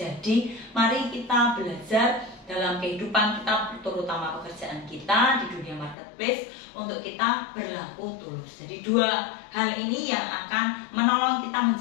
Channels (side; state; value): right; drops out; at 6.0 s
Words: mari kita belajar dalam kehidupan kita, terutama pekerjaan kita di dunia marketplace, untuk kita berlaku tulus. Jadi dua hal ini yang akan menolong kita